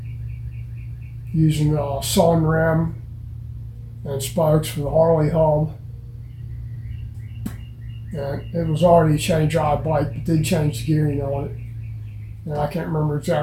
using a sun rim and spokes for the Harley hub. And it was already a chain drive bike, but did change the gearing on it. And I can't remember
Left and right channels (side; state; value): both; identical; correlation 1.00